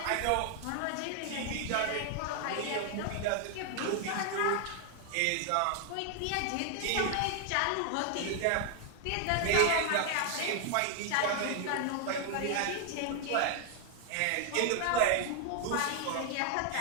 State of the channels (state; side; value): different; both; correlation 0.00